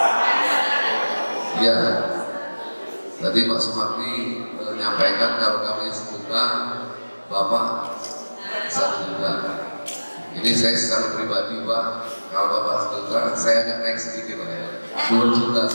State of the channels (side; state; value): both; inverted; correlation -1.00